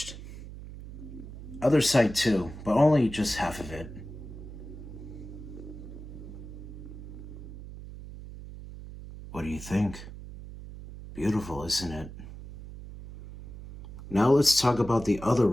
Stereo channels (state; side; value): noise; right; hum, 12 dB below the sound